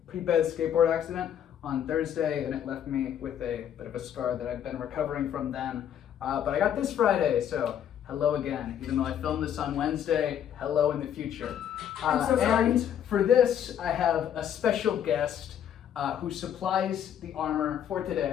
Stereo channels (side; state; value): right; quieter; 9.5 dB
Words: pretty bad skateboard accident on Thursday, and it left me with a bit of a scar that I've been recovering from then. But I got this Friday, so hello again. Even though I filmed this on Wednesday, hello in the future. I'm so sorry. And for this, I have a special guest who supplies the armor for